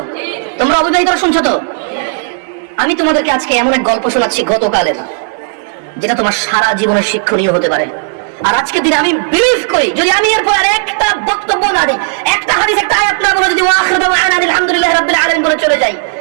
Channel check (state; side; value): silent; left; digital silence